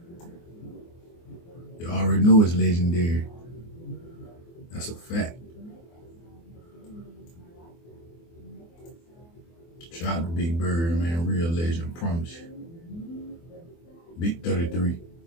You already know it's legendary. That's a fact. Shout out to Big Bird, man. Real legend, promise you. Big 33.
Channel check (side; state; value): right; late; 24 ms